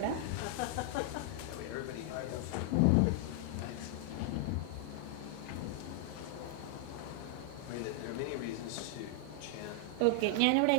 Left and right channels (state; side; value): different; both; correlation 0.00